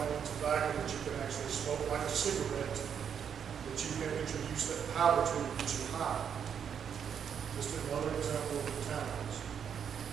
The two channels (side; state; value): left; quieter; 7.8 dB